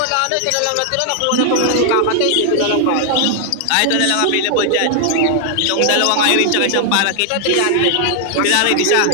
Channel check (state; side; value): different; both; correlation 0.00